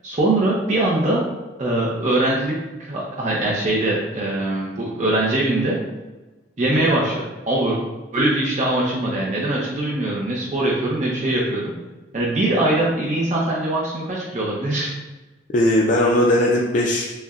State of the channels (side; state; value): both; normal; correlation 0.44